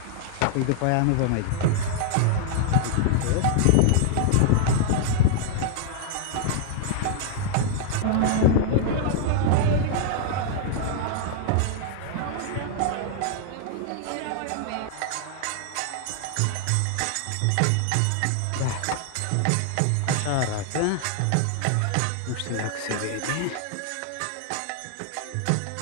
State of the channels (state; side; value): different; both; correlation 0.00